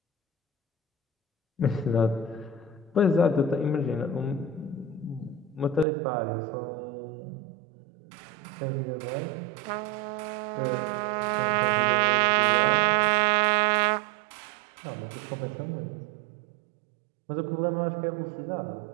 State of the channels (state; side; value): drops out; left; at 5.9 s